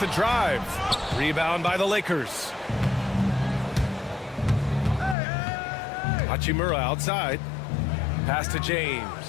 drive. Rebound by the Lakers. Hachimura outside. Pass to James.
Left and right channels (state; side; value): drops out; right; at 5.2 s